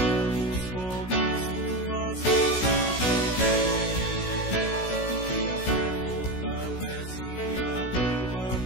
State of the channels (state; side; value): late; right; 16 ms